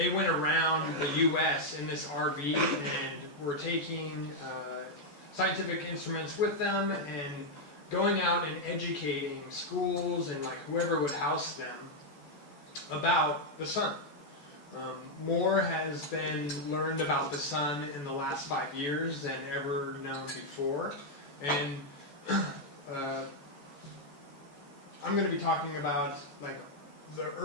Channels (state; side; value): late; right; 14 ms